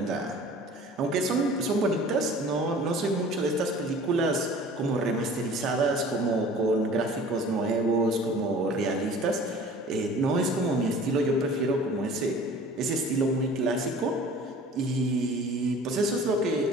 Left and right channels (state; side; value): normal; both; correlation 0.46